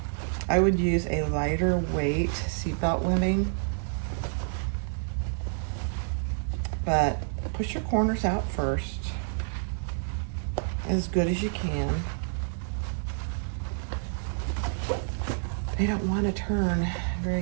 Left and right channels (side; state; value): left; silent; 59 dB below the other